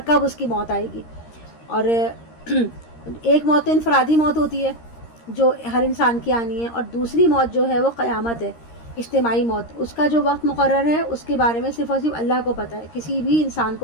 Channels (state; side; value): late; right; 13 ms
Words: کب اس کی موت آئے گی۔ اور ایک موت انفرادی موت ہوتی ہے جو ہر انسان کی آنی ہے، اور دوسری موت جو ہے وہ قیامت ہے، اجتماعی موت۔ اس کا جو وقت مقرر ہے اس کے بارے میں صرف اور صرف اللہ کو پتہ ہے، کسی بھی انسان